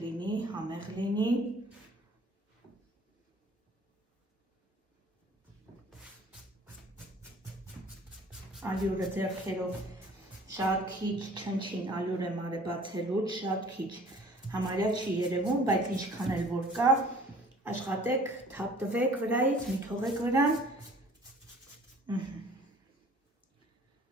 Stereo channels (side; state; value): both; normal; correlation 0.51